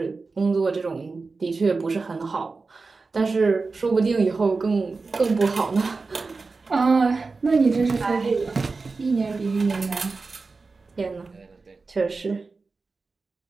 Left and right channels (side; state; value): left; quieter; 4.1 dB